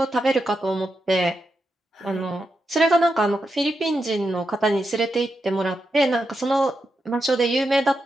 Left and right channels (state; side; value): normal; both; correlation 0.86